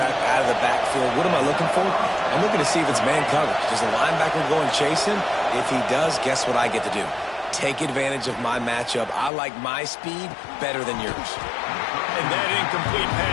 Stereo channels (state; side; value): drops out; right; at 9.3 s